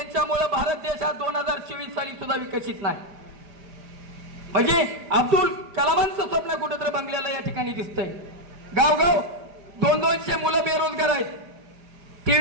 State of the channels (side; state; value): left; late; 5.0 ms